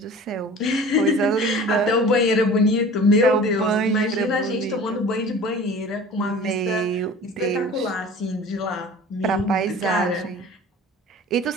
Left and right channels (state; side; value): normal; both; correlation 0.42